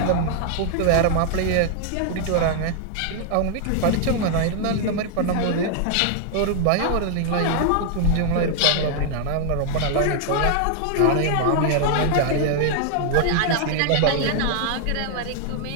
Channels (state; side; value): different; both; correlation 0.00